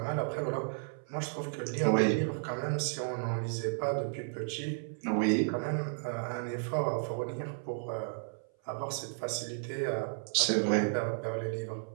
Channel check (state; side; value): silent; left; 56 dB below the other